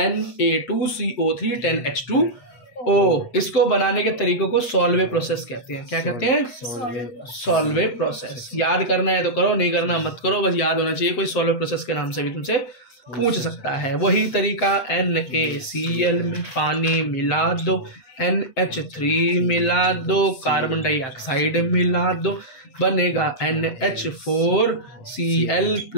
10H2O। इसको बनाने के तरीकों को सॉल्वे प्रोसेस कहते हैं। क्या कहते हैं, सॉल्वे प्रोसेस। याद करना है तो करो, नहीं करना मत करो, बस याद होना चाहिए। कोई सॉल्वे प्रोसेस के नाम से भी तुमसे पूछ सकता है। वही तरीका NaCl में पानी मिला दो, NH3 मिला दो, कार्बन डाइऑक्साइड मिला दो, बनेगा NH4Cl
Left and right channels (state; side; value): late; right; 7.7 ms